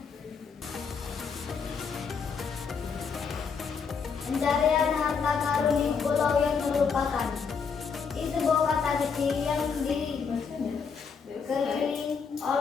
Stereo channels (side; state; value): right; quieter; 5.9 dB